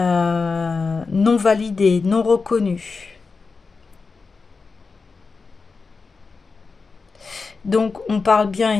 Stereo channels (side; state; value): right; quieter; 4.5 dB